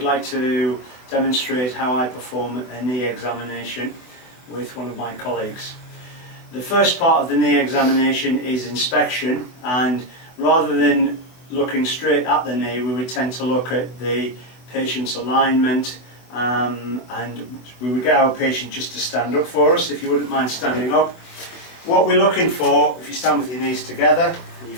to demonstrate how I perform a knee examination with one of my colleagues. The first part of the knee examination is inspection, and rather than looking straight at the knee, we would tend to look at the patient's alignment, and we would get our patient just to stand up for us, if you wouldn't mind standing up. What we're looking for, if you stand with your knees together and your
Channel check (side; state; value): right; late; 24 ms